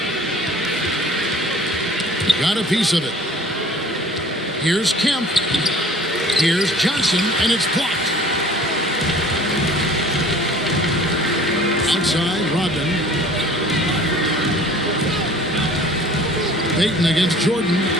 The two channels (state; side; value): normal; both; correlation 0.48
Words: Got a piece of it. Here's Kemp. Here's Johnson, and it's blocked. Outside, Rodman. Payton against Jordan.